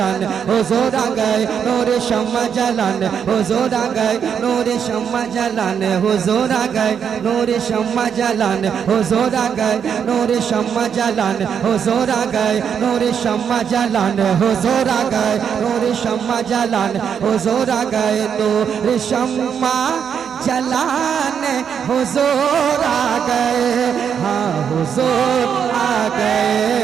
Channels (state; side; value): quieter; left; 7.6 dB